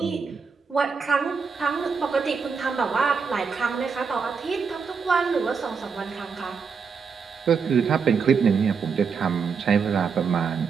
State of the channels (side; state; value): left; quieter; 5.7 dB